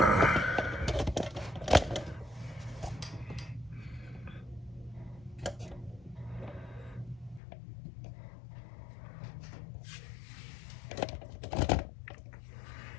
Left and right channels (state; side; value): drops out; right; at 7.4 s